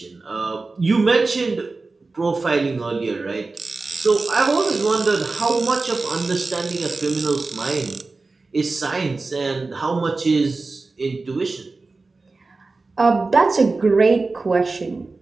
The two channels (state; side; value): quieter; left; 3.7 dB